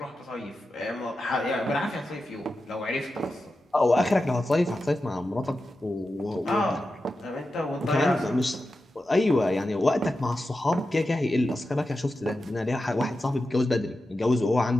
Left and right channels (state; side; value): normal; both; correlation 0.91